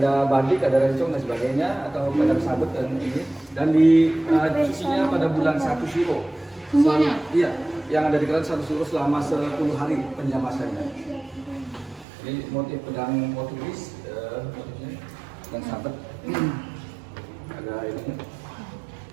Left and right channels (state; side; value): drops out; left; at 12.1 s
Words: badik, ada rencong dan sebagainya, atau pedang sabet dan ini, dan sucinya pada bulan 1 Syuro. Iya, yang ada di kerajaan 1 Syuro selama 10 hari penjamasannya. Ini motif pedang Portugis, motifnya dan sabet. Ada ini.